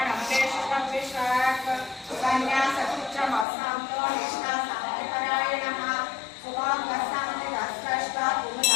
देशकं विशाख सन्न्यासपुत्रमसान्तो निष्ठा सामपरायणः सुभागस्सान्तिरस्तष्टा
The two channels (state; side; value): drops out; right; at 3.5 s